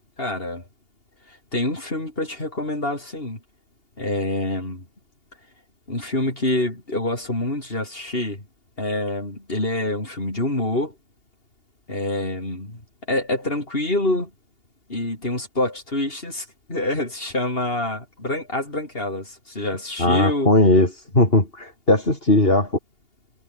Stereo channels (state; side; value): late; right; 2.8 ms